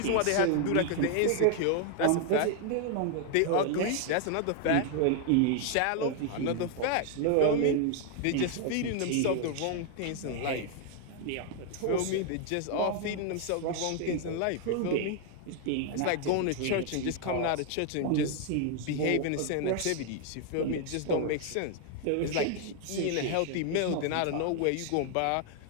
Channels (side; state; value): both; different; correlation 0.00